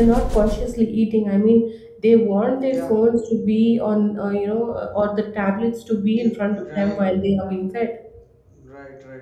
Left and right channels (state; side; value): identical; both; correlation 1.00